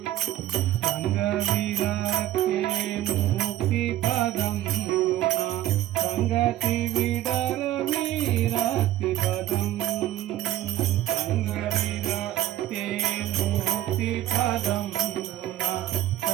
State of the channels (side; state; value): left; quieter; 13.7 dB